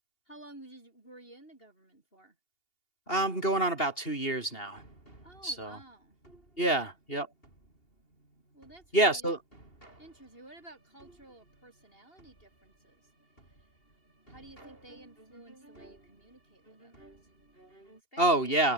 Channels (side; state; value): right; late; 2.8 ms